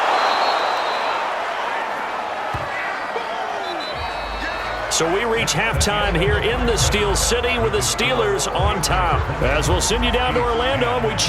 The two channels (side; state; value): both; identical; correlation 1.00